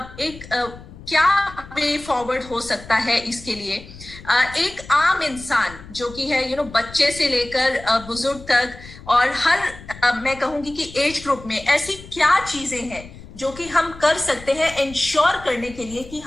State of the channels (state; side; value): noise; left; rumble, 17 dB below the sound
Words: एक क्या वे फॉरवर्ड हो सकता है इसके लिए? एक आम इंसान जो कि है बच्चे से लेकर बुजुर्ग तक, और हर मैं कहूंगी कि एज ग्रुप में ऐसी क्या चीजें हैं जो कि हम कर सकते हैं इंश्योर करने के लिए कि